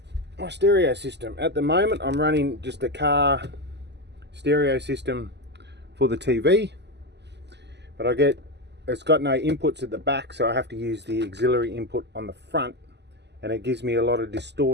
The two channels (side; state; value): left; late; 0.50 ms